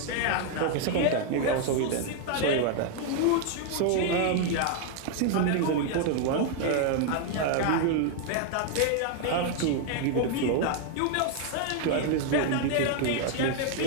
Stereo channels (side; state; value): both; different; correlation 0.00